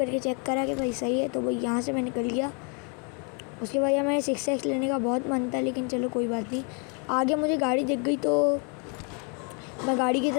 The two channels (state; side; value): quieter; right; 36.7 dB